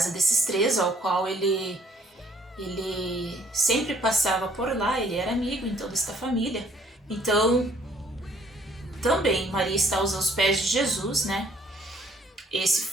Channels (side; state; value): both; normal; correlation 0.62